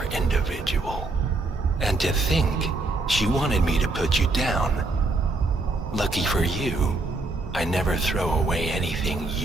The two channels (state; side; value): quieter; left; 3.2 dB